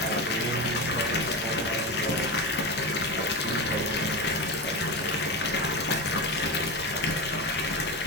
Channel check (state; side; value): normal; both; correlation 0.19